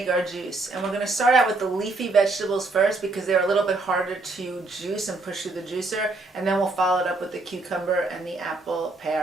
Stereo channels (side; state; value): left; quieter; 3.2 dB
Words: our juice, and we're going to start out with the leafy vegetables first because they're a little bit harder to juice and push through the juicer, and then we'll follow it up with the cucumber and the apple,